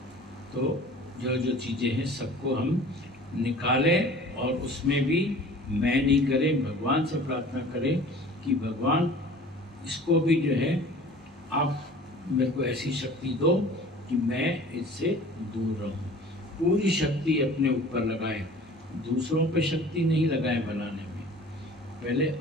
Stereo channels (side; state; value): both; normal; correlation 0.45